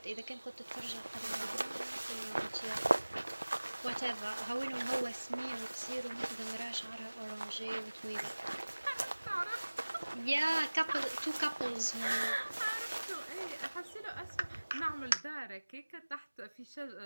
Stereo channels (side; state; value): both; inverted; correlation -1.00